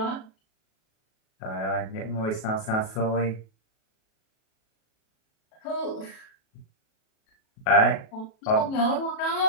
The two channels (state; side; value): late; right; 37 ms